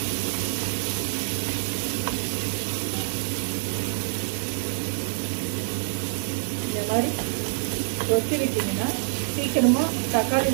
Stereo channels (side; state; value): left; silent; 61 dB below the other